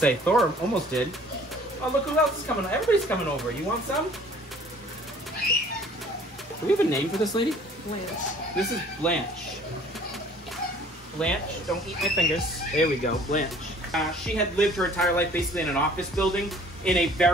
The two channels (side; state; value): both; normal; correlation 0.53